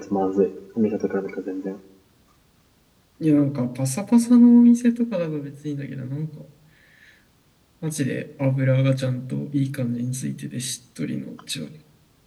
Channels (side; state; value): both; identical; correlation 1.00